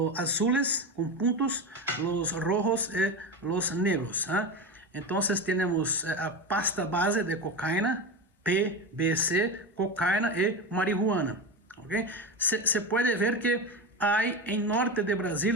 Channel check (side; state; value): both; normal; correlation 0.20